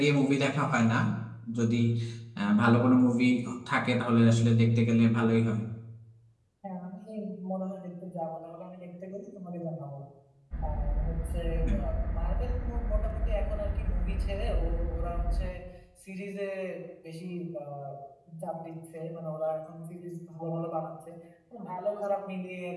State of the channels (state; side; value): identical; both; correlation 1.00